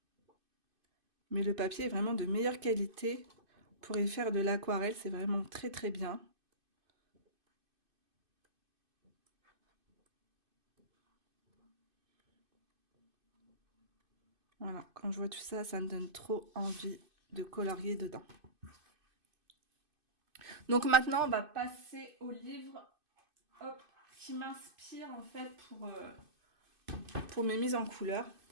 Mais le papier est vraiment de meilleure qualité. Pour y faire de l'aquarelle, c'est vraiment très bien. Voilà, quand je vois tout ça, ça me donne trop envie de colorier dedans. Donc maintenant, on va passer au livre qui m'inspire en fait pour mes mises en couleur.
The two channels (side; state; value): left; late; 2.5 ms